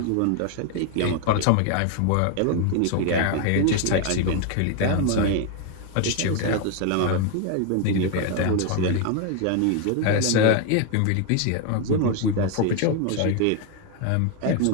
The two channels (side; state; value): both; different; correlation 0.01